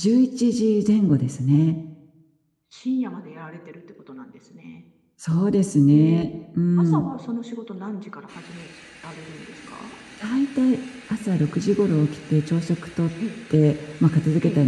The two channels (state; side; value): identical; both; correlation 1.00